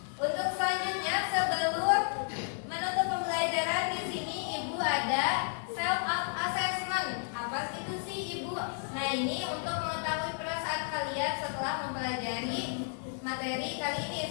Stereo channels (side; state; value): right; silent; 56 dB below the other